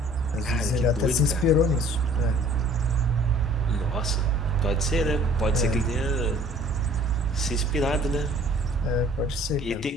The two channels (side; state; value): both; normal; correlation 0.53